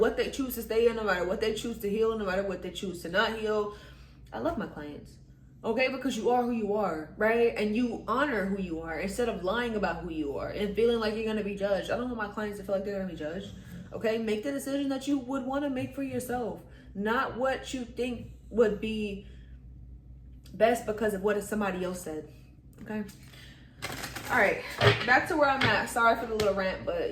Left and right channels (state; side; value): identical; both; correlation 1.00